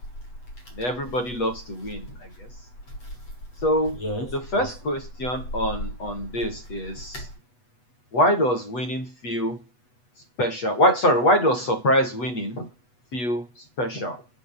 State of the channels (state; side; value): late; right; 8.2 ms